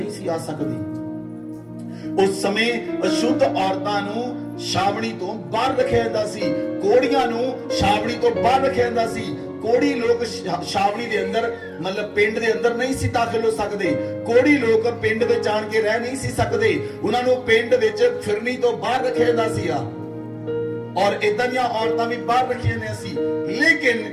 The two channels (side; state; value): both; identical; correlation 1.00